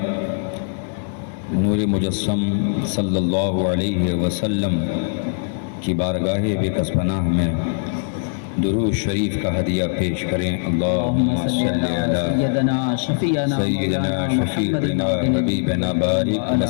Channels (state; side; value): silent; right; digital silence